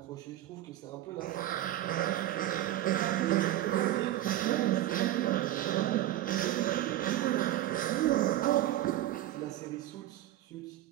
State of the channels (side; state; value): left; quieter; 13.8 dB